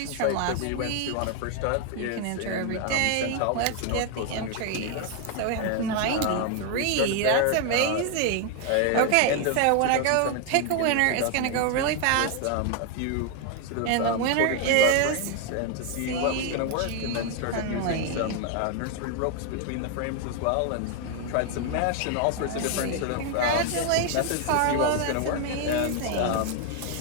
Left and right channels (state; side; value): different; both; correlation 0.01